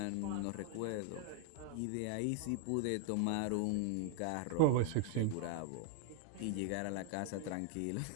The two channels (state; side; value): different; both; correlation 0.00